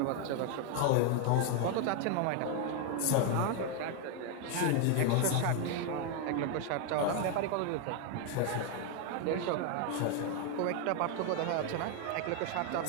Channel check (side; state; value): both; different; correlation 0.01